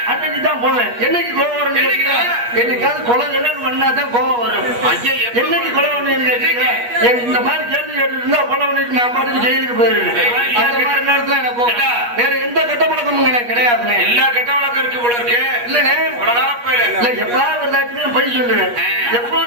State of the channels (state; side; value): late; left; 8.4 ms